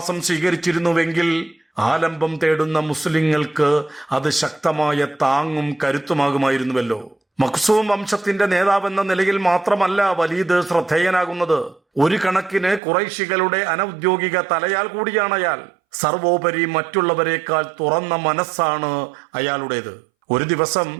സ്വീകരിച്ചിരുന്നുവെങ്കിൽ ആലംബം തേടുന്ന മുസ്ലിങ്ങൾക്ക് അത് ശക്തമായ താങ്ങും കരുത്തുമാകുമായിരുന്നുവല്ലോ. മഖ്സൂം വംശത്തിന്റെ നേതാവെന്ന നിലയിൽ മാത്രമല്ല വലീദ് ശ്രദ്ധേയനാകുന്നത്, ഒരു കണക്കിന് ഖുറൈശികളുടെ അനൗദ്യോഗിക തലയാൽ കൂടിയാണ് അയാൾ. സർവോപരി മറ്റുള്ളവരെക്കാൾ തുറന്ന മനസ്സാണ് അയാളുടേത്. ഒരു ദിവസം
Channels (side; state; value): left; drops out; at 12.8 s